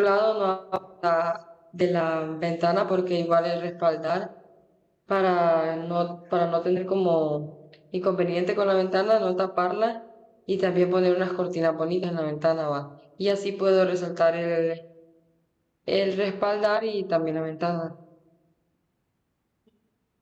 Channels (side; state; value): both; identical; correlation 1.00